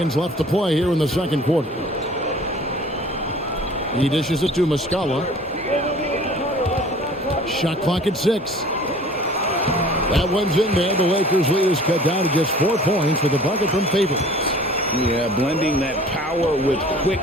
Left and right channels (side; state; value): both; normal; correlation 0.47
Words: left to play here in the second quarter. He dishes it to Muscala. Shot clock at 6. That one's in there. The Lakers lead is cut down to just 4 points with a bucket from Favors. Yeah, blending that power with